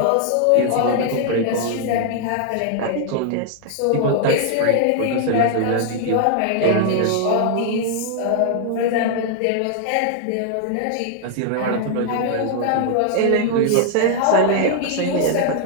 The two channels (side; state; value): both; different; correlation 0.00